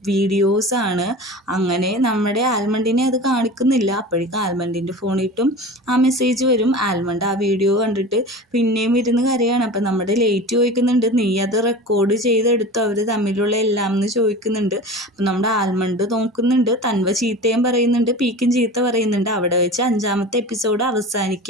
വീഡിയോസാണ്. അങ്ങനെ നമ്മുടെ ആൽമണ്ടിനെ അത് കാണിക്കുന്നില്ല. അപ്പോഴേക്കും ആൽമണ്ടിൻ്റെ ഫോണിട്ടും ആ മെസ്സേജ് വരും. ആൽമണ്ട് ആ വീഡിയോ കണ്ടിട്ട് പിന്നെയും ഇരുന്ന് കരയാണ്. അപ്പം നമ്മുടെ ലേറ്റ് ചോദിക്കുന്നുണ്ട് നീ അത് റെക്കോർഡ് ചെയ്തെടുത്തു അവർ തമ്മിലുള്ള എല്ലാം എന്ന് ചോദിക്കുന്നുണ്ട്. അപ്പം നമ്മുടെ ആൽമണ്ട് നോക്കുന്നുണ്ട്. തൻവ ചീത്തയും പറയുന്നുണ്ട്, പീക്കും ചീത്ത പറയുന്നുണ്ട്. അവിടെ വെച്ച് 5ാമത്തെ എപ്പിസോഡ്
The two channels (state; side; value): normal; both; correlation 0.34